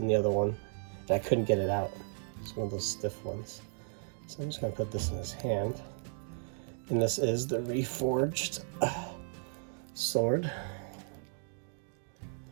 the other one, and I couldn't get it out. It's one of those stiff ones. So I'm just gonna put this in his hand. And this is the reforged sword.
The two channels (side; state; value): left; silent; digital silence